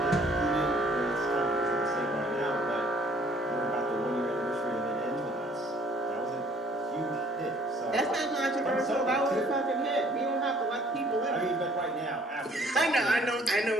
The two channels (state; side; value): normal; both; correlation 0.58